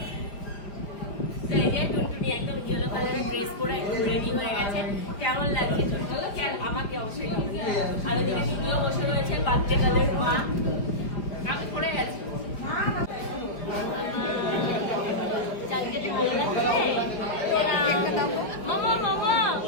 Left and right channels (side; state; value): right; late; 4.8 ms